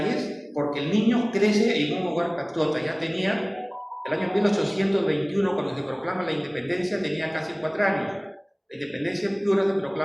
porque el niño crece en un hogar patriota. Ya tenía, el año 1821, cuando se proclama la independencia, tenía casi 4 años. La independencia en Piura se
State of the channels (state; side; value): identical; both; correlation 1.00